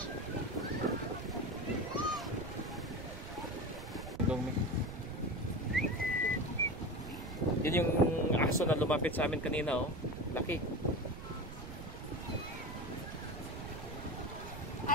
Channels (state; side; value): noise; right; rumble, 11 dB below the sound